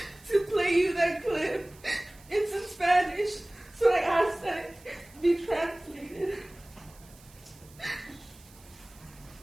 to play you that clip. It's in Spanish, so I ask that it be translated.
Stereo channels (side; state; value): right; noise; hiss, 25 dB below the sound